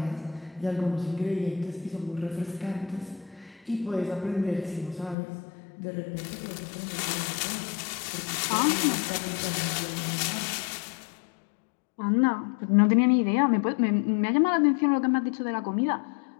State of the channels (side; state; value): right; drops out; at 5.2 s